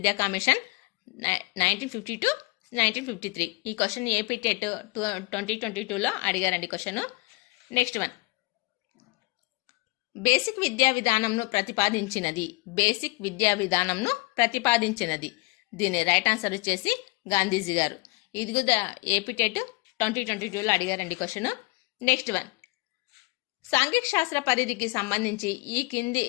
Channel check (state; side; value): quieter; right; 25.9 dB